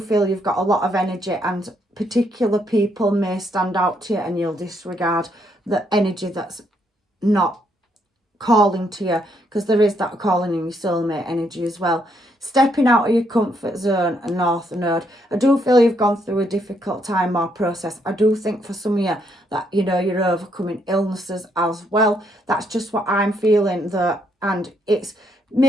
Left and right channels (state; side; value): normal; both; correlation 0.74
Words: you've got a lot of energy, and particular people may stand out to you and you'll disregard the energy that's not calling to you, because there is that calling in your soulmate energy as well. Stepping out of your comfort zone, a North Node. I do feel you've gone through a difficult time or process. I do think for some of you that, you know, you're overcoming illnesses as well. That's just what I'm feeling though. And it's